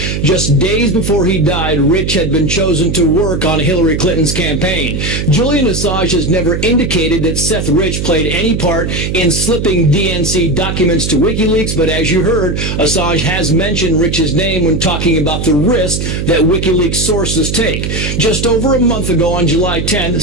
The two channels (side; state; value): right; noise; hum, 3 dB below the sound